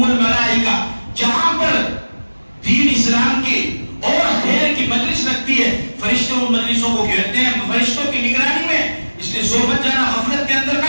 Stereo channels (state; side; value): inverted; both; correlation -1.00